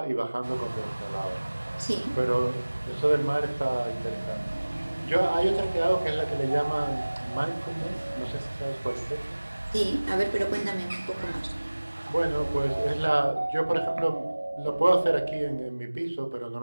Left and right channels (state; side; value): inverted; both; correlation -1.00